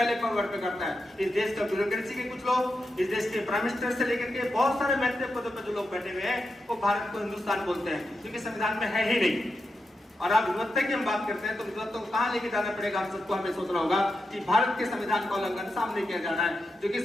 फॉरवर्ड पे करता है। इस देश का ब्यूरोक्रेसी के कुछ लोग, इस देश के प्राइम मिनिस्टर से लेकर के बहुत सारे महत्वपूर्ण पदों पर जो लोग बैठे हुए हैं, वो भारत को हिंदुस्तान बोलते हैं, क्योंकि संविधान में है ही नहीं। और आप विविधता की हम बात करते हैं तो विविधता को कहां लेके जाना पड़ेगा? हम सबको हमें सोचना होगा कि भारत के संविधान का उल्लंघन सामने किया जा रहा है, जो कि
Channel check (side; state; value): both; normal; correlation 0.88